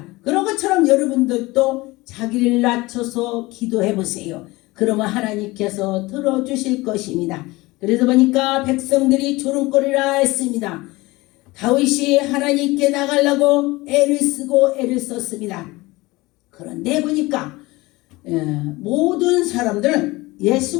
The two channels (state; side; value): quieter; right; 21.3 dB